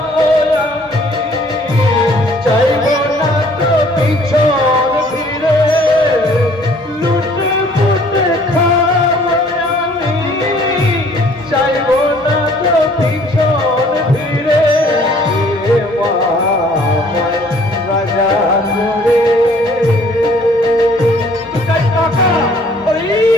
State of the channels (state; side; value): normal; both; correlation 0.57